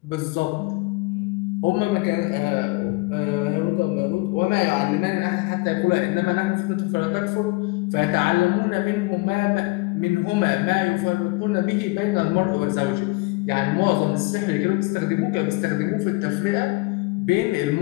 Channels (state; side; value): quieter; right; 24.2 dB